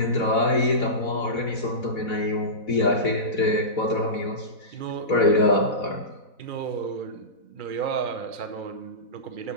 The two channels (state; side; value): late; right; 4.1 ms